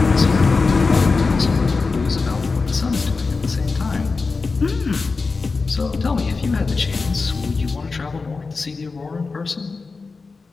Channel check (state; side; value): quieter; right; 4.2 dB